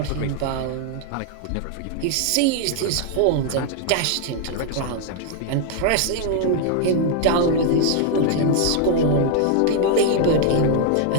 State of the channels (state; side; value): different; both; correlation 0.00